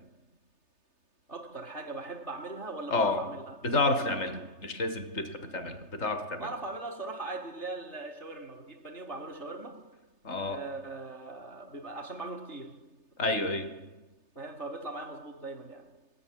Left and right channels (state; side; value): late; right; 3.3 ms